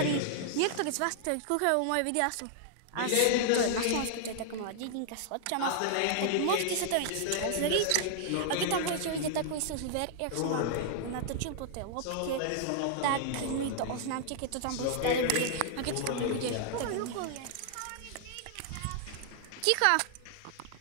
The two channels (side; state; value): both; different; correlation -0.01